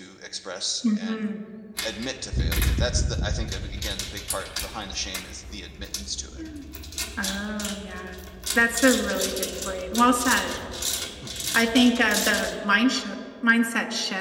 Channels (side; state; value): both; identical; correlation 1.00